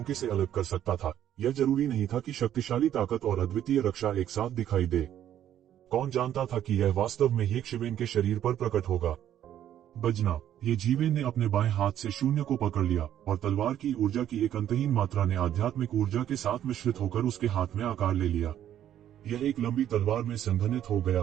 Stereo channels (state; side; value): quieter; left; 11.0 dB